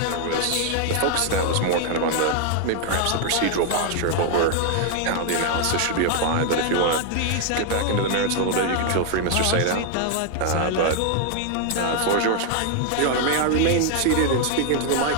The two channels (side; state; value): both; different; correlation 0.00